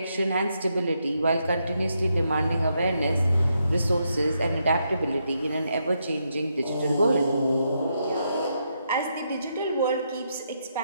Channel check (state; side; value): inverted; both; correlation -0.80